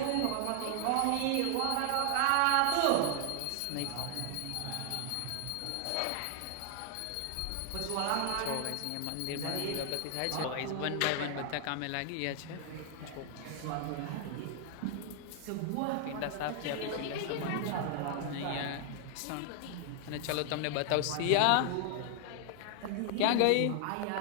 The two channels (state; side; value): different; both; correlation 0.00